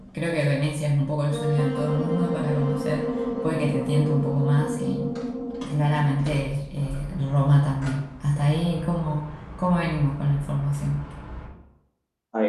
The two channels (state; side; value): identical; both; correlation 1.00